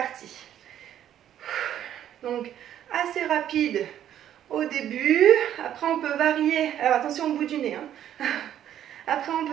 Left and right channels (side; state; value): left; quieter; 10.9 dB